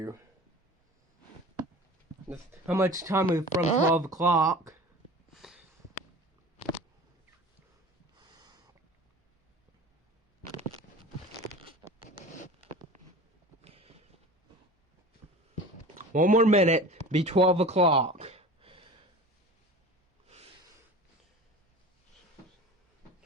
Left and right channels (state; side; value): normal; both; correlation 0.38